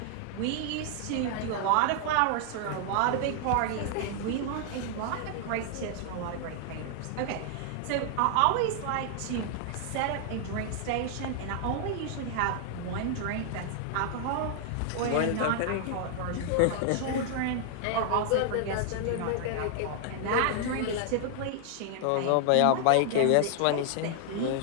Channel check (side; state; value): both; different; correlation 0.00